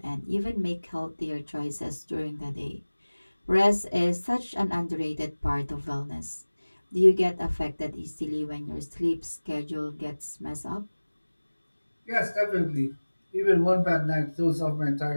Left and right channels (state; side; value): inverted; both; correlation -1.00